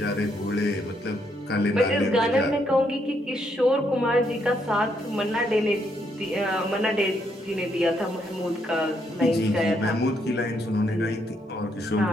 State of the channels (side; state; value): both; normal; correlation 0.75